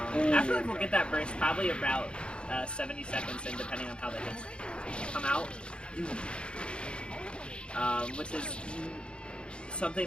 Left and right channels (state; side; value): late; right; 0.055 ms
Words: will get that burst probably about 70 seconds in, depending on how the hits come out. Which is something